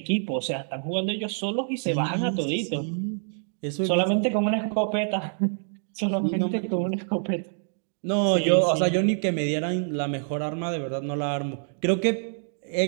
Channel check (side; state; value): left; silent; digital silence